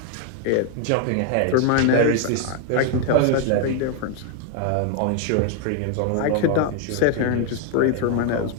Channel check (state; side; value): different; both; correlation 0.01